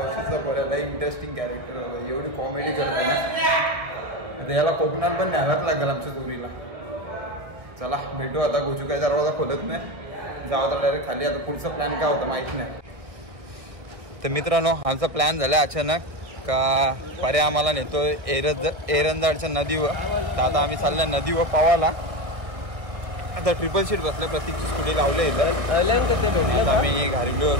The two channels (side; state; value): left; late; 1.6 ms